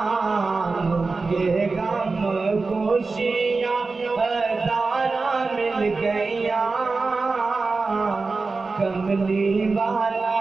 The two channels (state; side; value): quieter; left; 4.0 dB